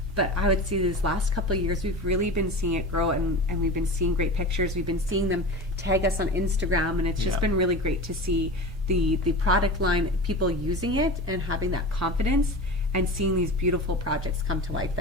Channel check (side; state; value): both; normal; correlation 0.30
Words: But I would say these last couple of years, we've really been seeing it grow, and we've been seeing great pictures. We've been seeing them tag us on Instagram, and it's just been really great to see the product line, people using it and having that confidence and seeing these beautiful projects come to life